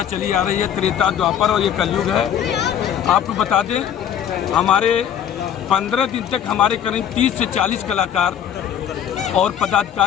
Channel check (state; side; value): quieter; right; 9.4 dB